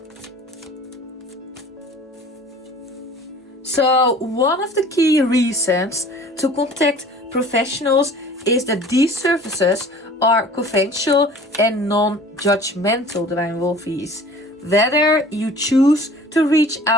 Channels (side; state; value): both; normal; correlation 0.46